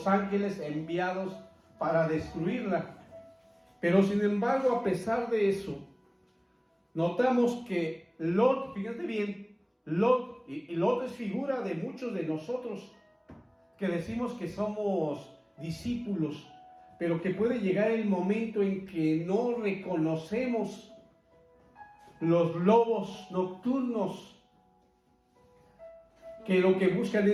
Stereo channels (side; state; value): both; identical; correlation 1.00